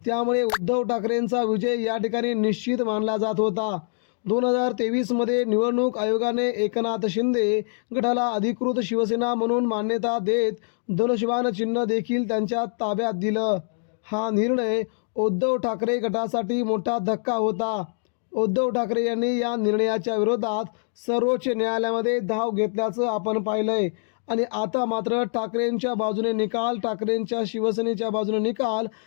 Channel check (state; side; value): silent; right; digital silence